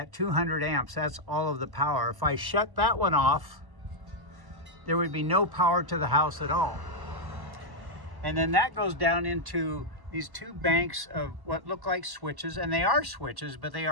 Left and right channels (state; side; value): late; left; 1.1 ms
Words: 200 amps. That's all of the power. If I shut that one off, there would be no power to the house at all. And then that goes down into these 2 banks of what look like switches, and they are switches, but they